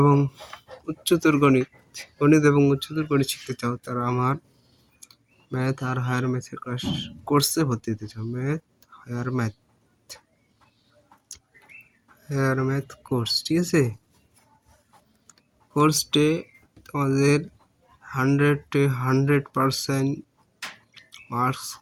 উচ্চতর গণিত গণিত এবং উচ্চতর গণিত শিখতে চাও, তারা আমার ম্যাথ আর হায়ার ম্যাথের কোর্সে ভর্তি হতে চাও। হায়ার ম্যাথ কোর্স, ঠিক আছে? কোর্সটি তোমাদের 100% মার্কস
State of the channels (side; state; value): both; identical; correlation 1.00